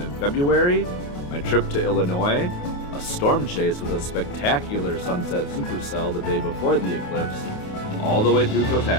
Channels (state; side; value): late; right; 28 ms